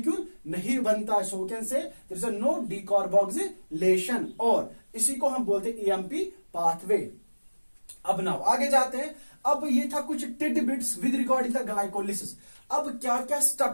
नहीं बनता है, so we can say there is a no decarboxylation, और इसी को हम बोलते हैं ईएमपी पाथवे। अब नाउ आगे जाते हैं। अब ये था कुछ titbits with regarding the glycolysis. अब क्या क्या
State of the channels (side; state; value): both; inverted; correlation -1.00